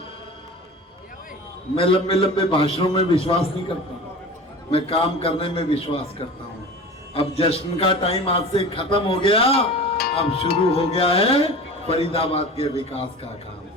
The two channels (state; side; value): normal; both; correlation 0.36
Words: लंबे भाषणों में विश्वास नहीं करता, मैं काम करने में विश्वास करता हूँ। अब जश्न का टाइम आज से खत्म हो गया, अब शुरू हो गया है फरीदाबाद के विकास का काम।